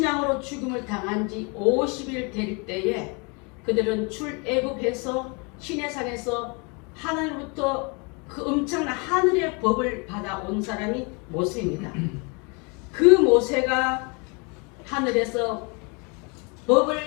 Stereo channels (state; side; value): quieter; right; 31.9 dB